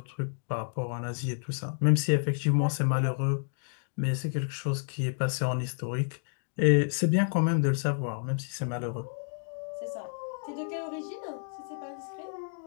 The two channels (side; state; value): right; silent; digital silence